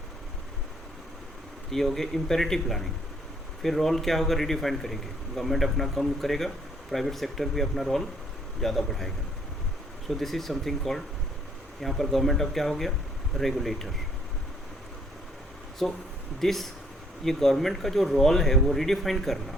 ये हो गया imperative planning. फिर role क्या होगा? रिडिफाइन करेंगे. गवर्नमेंट अपना कम करेगा, प्राइवेट सेक्टर भी अपना रोल ज़्यादा बढ़ाएगा. सो दिस इज समथिंग कॉल्ड, यहाँ पर गवर्नमेंट अब क्या हो गया? रेगुलेटर. सो दिस ये गवर्नमेंट का जो रोल है वो रिडिफाइन करना,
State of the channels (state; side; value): normal; both; correlation 0.65